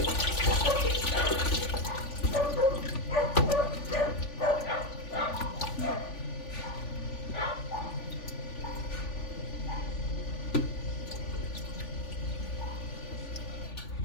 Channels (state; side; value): late; right; 3.5 ms